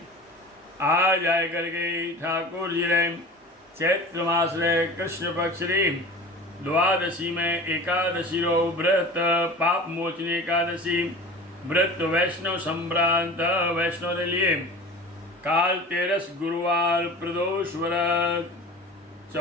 आज आए करके ठाकुर जी ने चैत्र मास रे कृष्ण पक्ष री द्वादशी में एकादशी रो व्रत पाप मोचनी एकादशी व्रत वैष्णव संभ्रांत वैष्णव के लिए काल 13 गुरुवार प्रदोष व्रत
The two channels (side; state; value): both; normal; correlation 0.37